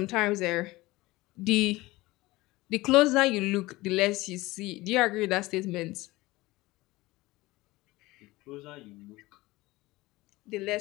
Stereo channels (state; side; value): quieter; right; 20.0 dB